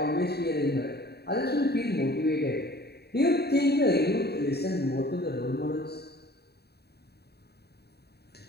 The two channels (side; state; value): right; late; 0.47 ms